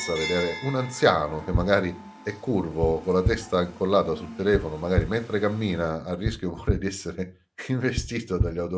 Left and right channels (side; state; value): both; identical; correlation 1.00